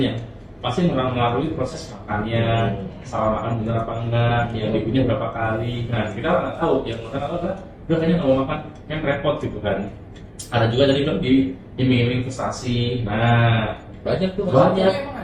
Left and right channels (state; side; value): identical; both; correlation 1.00